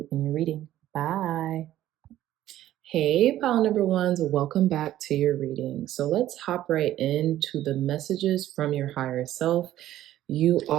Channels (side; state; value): left; quieter; 13.3 dB